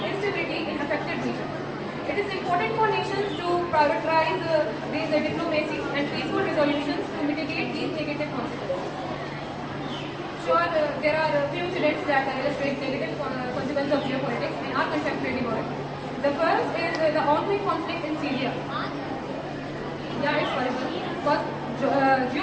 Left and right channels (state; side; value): identical; both; correlation 1.00